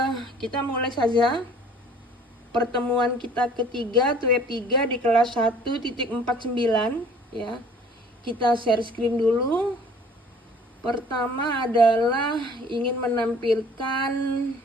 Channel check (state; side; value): normal; both; correlation 0.52